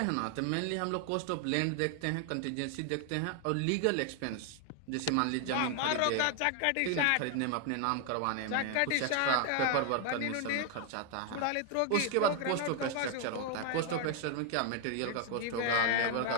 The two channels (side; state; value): both; different; correlation 0.00